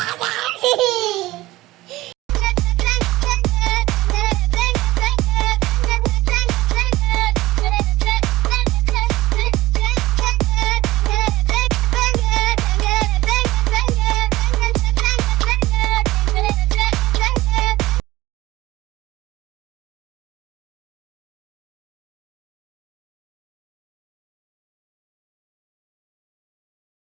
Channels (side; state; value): left; quieter; 17.9 dB